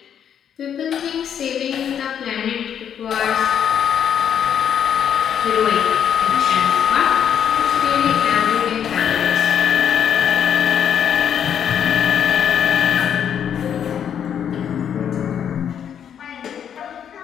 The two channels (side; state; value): right; quieter; 8.7 dB